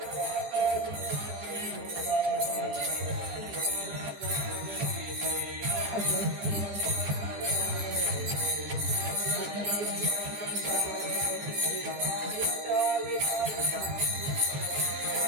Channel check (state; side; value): late; left; 14 ms